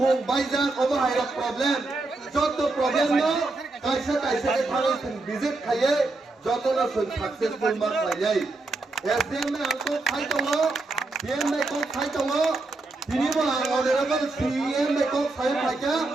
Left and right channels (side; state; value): left; quieter; 3.3 dB